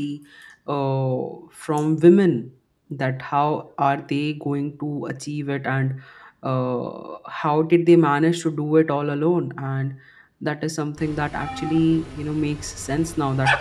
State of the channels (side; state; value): both; identical; correlation 1.00